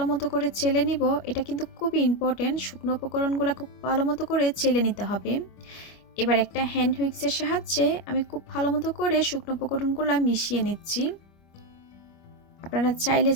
মতো করে চেলে নিব। এটা কিন্তু খুবই ইম্পর্টেন্ট, শুকনো উপকরণগুলো খুব ভালো মতো করে চেলে নিতে হবে। এবার একটা হ্যান্ড হুইক্সের সাহায্যে আমি খুব ভালো মতো করে শুকনো উপকরণগুলো মিশিয়ে নিচ্ছি। আপনারা চাইলে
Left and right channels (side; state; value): right; late; 25 ms